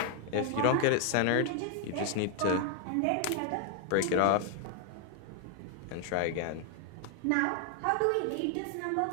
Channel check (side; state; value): both; different; correlation 0.00